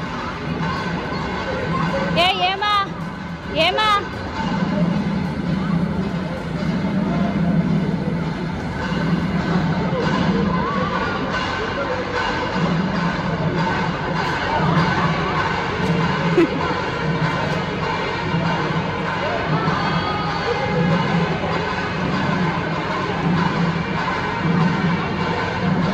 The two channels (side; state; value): both; identical; correlation 1.00